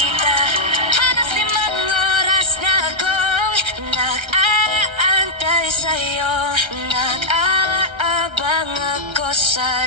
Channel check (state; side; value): late; left; 1.3 ms